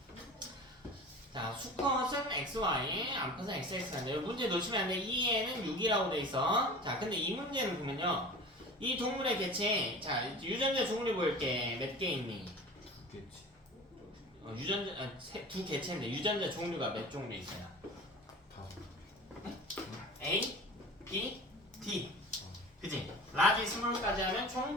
자, 수컷은 XY, 암컷은 XX인데 문제 놓치면 안 돼. 2에는 6이라고 돼 있어. 자, 근데 이 문제는 보면요. 이 동물의 개체, 자, 유전자 종류 볼게. 몇 개 있니? 2개지. 유전자, 두 개체인데 유전자 종류가 몇 종류 있어요? 5. A, B, D. 그지? 라지 스몰까지 하면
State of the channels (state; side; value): normal; both; correlation 0.38